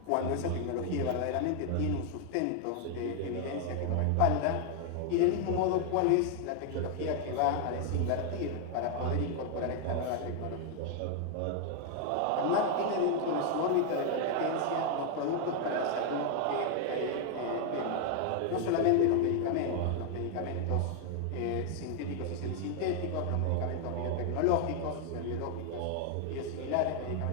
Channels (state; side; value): different; both; correlation 0.00